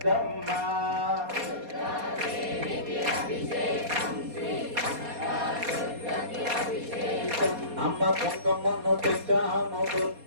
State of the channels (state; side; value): late; left; 4.2 ms